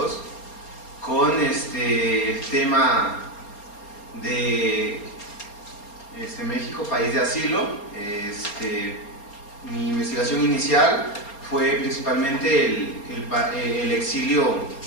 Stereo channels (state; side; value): late; right; 4.3 ms